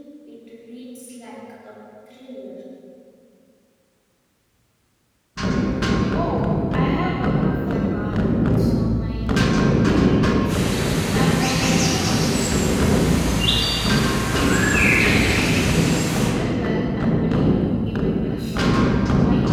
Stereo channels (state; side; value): identical; both; correlation 1.00